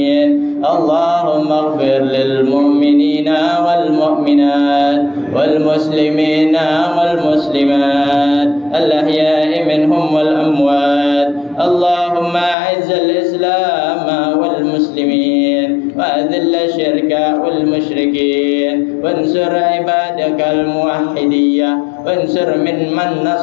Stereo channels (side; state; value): right; drops out; at 12.6 s